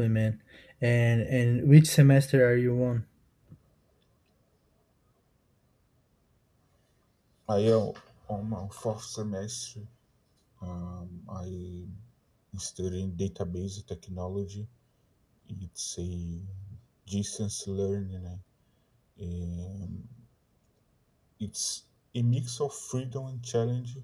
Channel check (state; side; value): identical; both; correlation 1.00